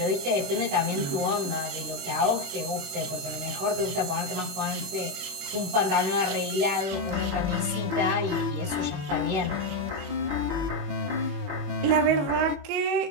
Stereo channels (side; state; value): left; late; 21 ms